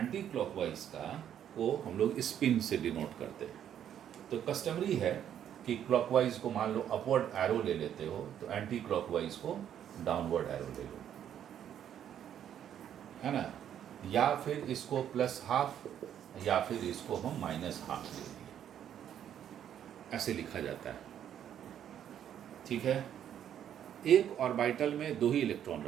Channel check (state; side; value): quieter; left; 9.8 dB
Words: क्लॉकवाइज का को हम लोग स्पिन से डिनोट करते हैं। तो कस्टमरी है कि क्लॉकवाइज को मान लो अपवर्ड एरो ले लेते हो, तो एंटी क्लॉकवाइज को डाउनवर्ड एरो ले लो, है ना। या फिर इसको +½ या फिर इसको हम -½ ले लिए, ऐसे लिखा जाता है। ठीक है। एक ऑर्बिटल में 2 ही इलेक्ट्रॉन